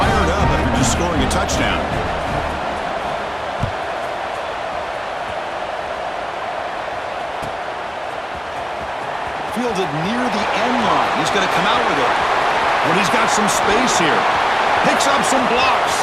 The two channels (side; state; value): both; identical; correlation 1.00